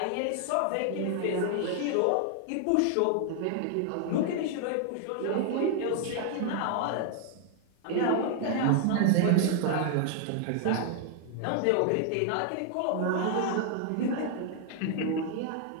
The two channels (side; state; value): both; different; correlation 0.00